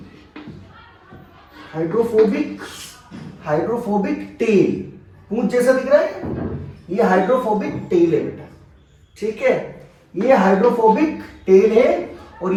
टेल, पूंछ जैसा दिख रहा है, ये हाइड्रोफोबिक टेल है बेटा, ठीक है। ये हाइड्रोफोबिक टेल है, और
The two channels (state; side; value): identical; both; correlation 1.00